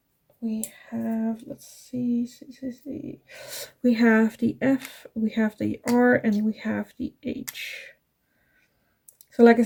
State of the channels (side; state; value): both; identical; correlation 1.00